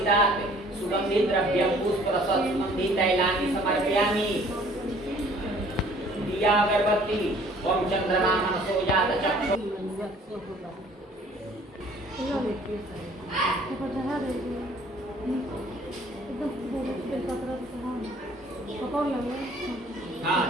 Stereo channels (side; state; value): both; normal; correlation 0.55